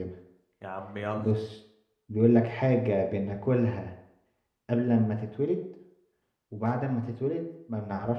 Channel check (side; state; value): both; identical; correlation 1.00